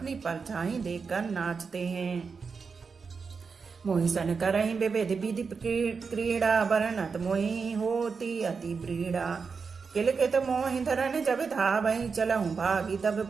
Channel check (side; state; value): left; quieter; 5.2 dB